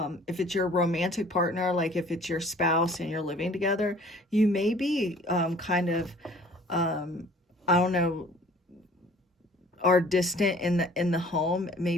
if it's your romantic partner, like if it's your spouse and you're living together, you may be, kind of, um, I don't know, are distant in the home.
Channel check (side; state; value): both; normal; correlation 0.52